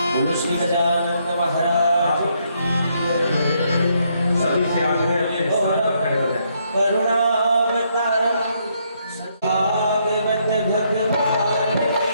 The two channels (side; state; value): both; inverted; correlation -0.74